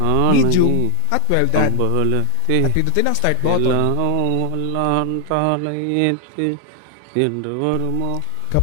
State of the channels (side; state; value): both; different; correlation 0.00